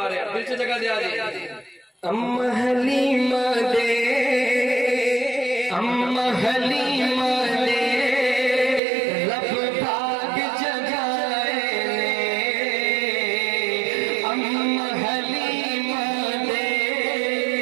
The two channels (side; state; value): left; drops out; at 8.8 s